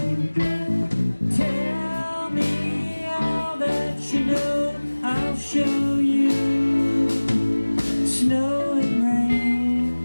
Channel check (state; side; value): inverted; both; correlation -1.00